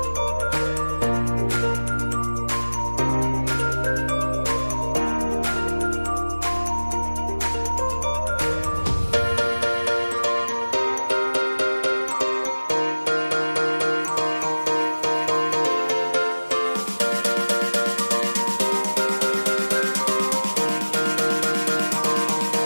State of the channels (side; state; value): both; inverted; correlation -1.00